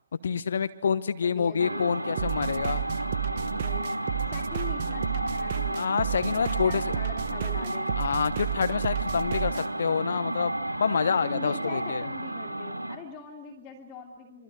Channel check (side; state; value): both; inverted; correlation -0.77